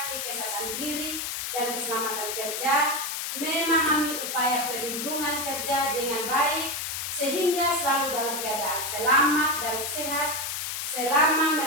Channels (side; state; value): left; noise; hiss, 3 dB below the sound